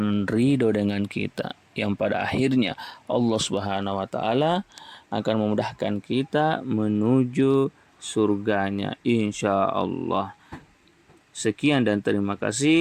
ridho dengan kita, yang pada akhirnya Allah Subhanahu wa taala akan memudahkan kita menuju surganya insyaallah. Sekian dan terima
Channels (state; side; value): identical; both; correlation 1.00